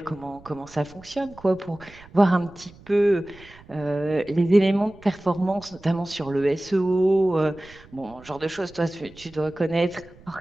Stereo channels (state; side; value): noise; right; rumble, 23 dB below the sound